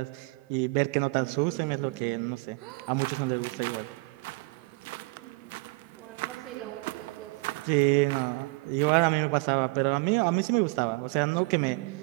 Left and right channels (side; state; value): left; quieter; 26.2 dB